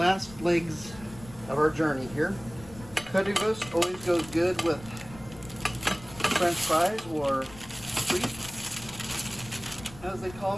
legs of our journey here. Currywurst always goes good with French fries, or frites, as they call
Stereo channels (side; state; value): left; noise; rumble, 18 dB below the sound